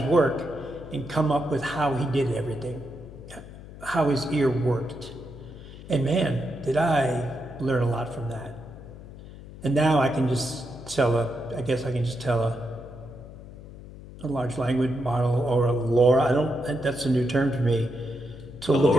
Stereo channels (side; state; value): left; noise; hum, 15 dB below the sound